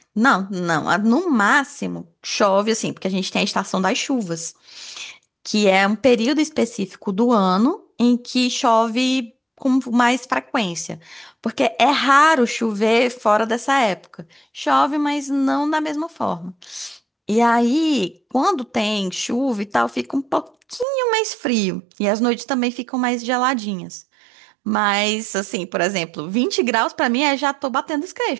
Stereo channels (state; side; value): drops out; left; at 20.9 s